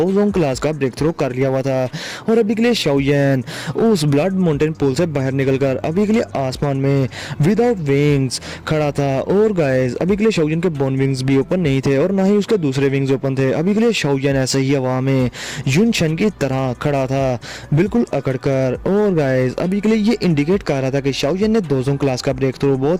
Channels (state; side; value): identical; both; correlation 1.00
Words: जोन क्लास का ब्रेक थ्रू कर लिया हुआ था और अभी के लिए शाओयन उस ब्लड माउंटेन पूल से बाहर निकलकर अभी के लिए आसमान में विदाउट विंग्स खड़ा था। और गाइस अभी के लिए शाओयन के बोन विंग्स भी ओपन नहीं थे और ना ही उसके दूसरे विंग्स ओपन थे। अभी के लिए शाओयन ऐसे ही हवा में युनशन की तरह खड़ा था, बिल्कुल अकड़कर। और गाइस अभी के लिए ये इंडिकेट कर रहा था कि शाओयन ने 2 जोन क्लास का ब्रेक थ्रू